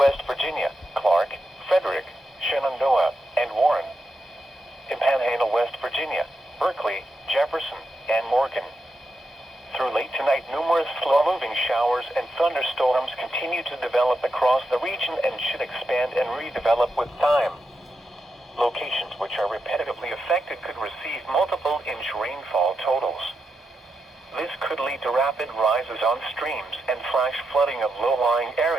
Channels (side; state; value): both; normal; correlation 0.86